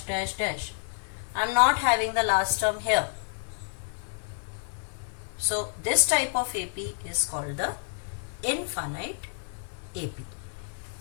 dash, dash, I'm not having the last term here. So this type of AP is called the infinite AP.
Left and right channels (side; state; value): right; silent; 58 dB below the other